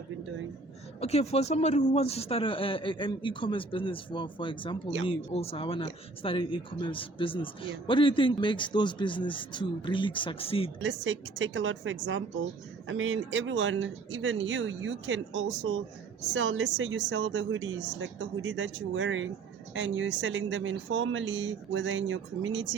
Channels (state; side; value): quieter; left; 3.7 dB